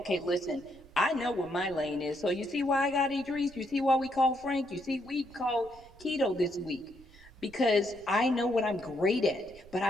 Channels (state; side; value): noise; right; rumble, 23 dB below the sound